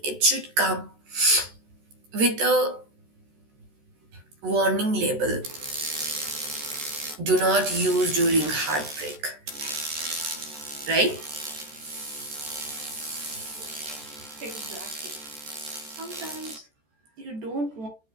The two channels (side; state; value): left; late; 14 ms